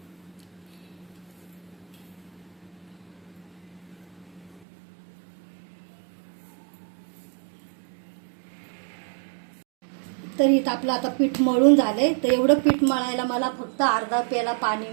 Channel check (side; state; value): left; drops out; at 4.6 s